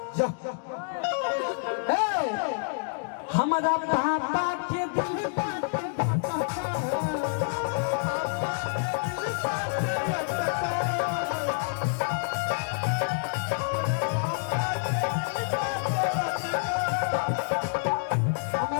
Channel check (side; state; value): right; silent; digital silence